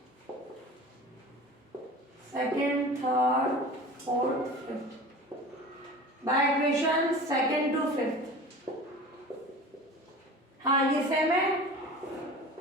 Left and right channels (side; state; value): both; normal; correlation 0.38